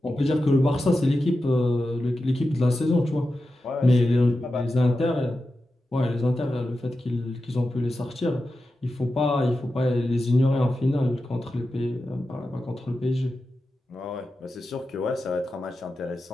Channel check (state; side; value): normal; both; correlation 0.91